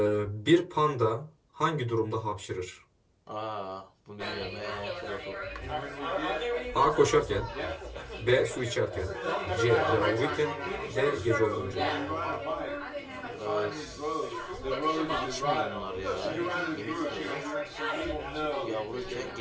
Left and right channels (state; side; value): identical; both; correlation 1.00